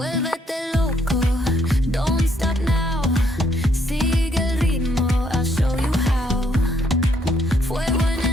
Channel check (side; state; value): both; normal; correlation 0.71